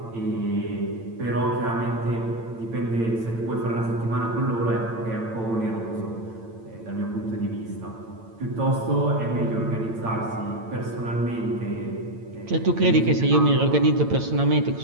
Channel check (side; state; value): left; late; 8.9 ms